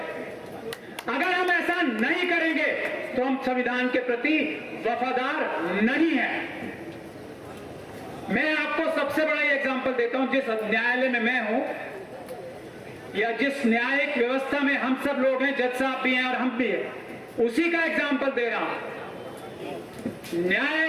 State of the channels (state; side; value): identical; both; correlation 1.00